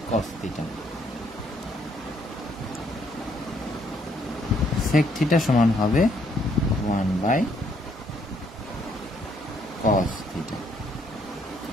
থিটা। সেক থিটা সমান হবে 1/কস থিটা।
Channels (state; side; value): normal; both; correlation 0.69